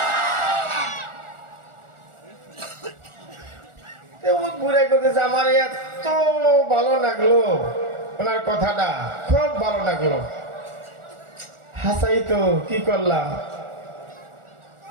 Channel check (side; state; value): left; late; 1.4 ms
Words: ঘুরে করতেছে, আমার এত ভালো লাগলো ওনার কথাটা, খুব ভালো লাগলো। হাসাই তো